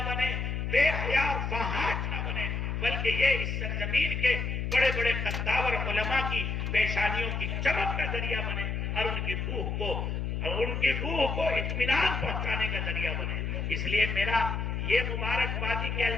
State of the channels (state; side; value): noise; left; hum, 2 dB below the sound